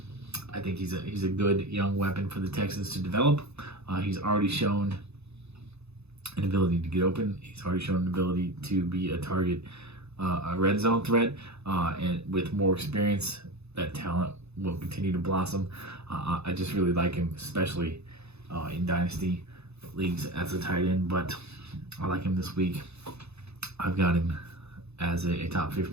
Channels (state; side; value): late; left; 0.80 ms